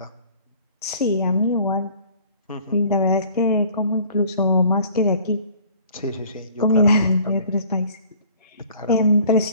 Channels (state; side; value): inverted; both; correlation -0.52